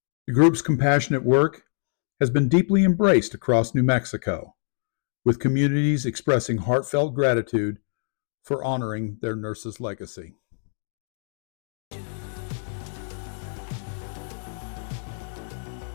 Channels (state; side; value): silent; right; digital silence